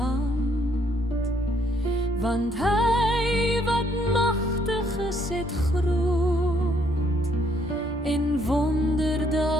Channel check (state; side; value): normal; both; correlation 0.69